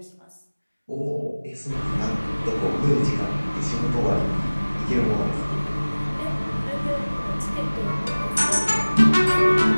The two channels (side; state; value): both; inverted; correlation -1.00